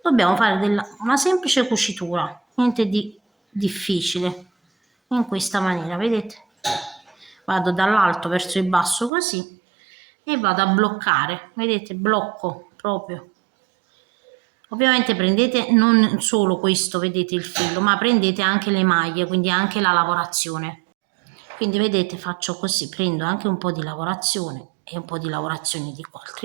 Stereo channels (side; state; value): left; drops out; at 9.1 s